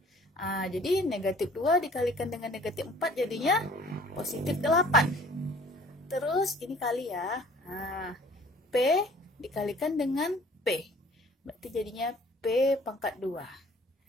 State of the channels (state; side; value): normal; both; correlation 0.52